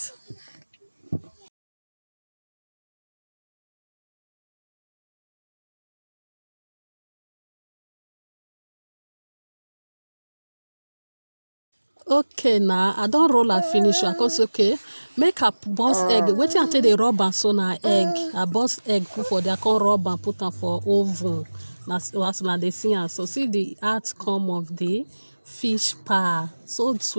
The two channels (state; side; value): inverted; both; correlation -1.00